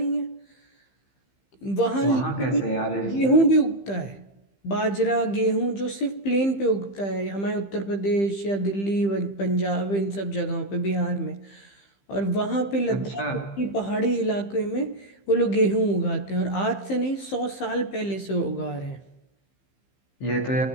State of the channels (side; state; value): right; late; 15 ms